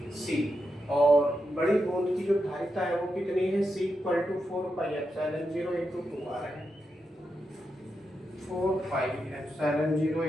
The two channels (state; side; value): normal; both; correlation 0.86